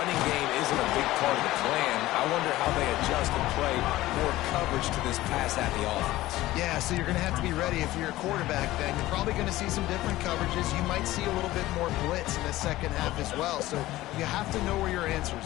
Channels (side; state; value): right; quieter; 16.7 dB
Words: game isn't a big part of the plan. I wonder how they adjust and play more coverage to this pass-happy offense. Yeah, so you're going to have to be ready if you're a quarterback then. You're probably going to see some different coverages. You might see a little bit more blitz in the second half as well, so you have to know where your answers